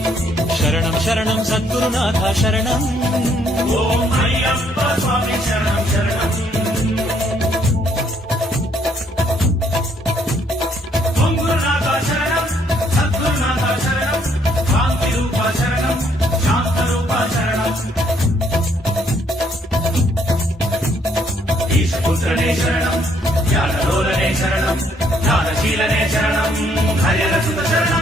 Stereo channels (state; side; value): normal; both; correlation 0.68